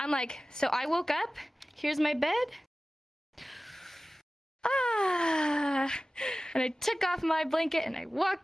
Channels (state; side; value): normal; both; correlation 0.96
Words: like, so I woke up, here's my bed. And I took off my blanket and I